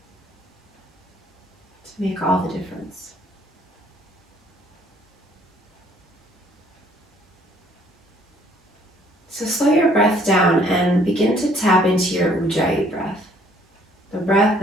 to make all the difference. So slow your breath down and begin to tap into your Ujjayi breath, the breath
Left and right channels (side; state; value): both; normal; correlation 0.61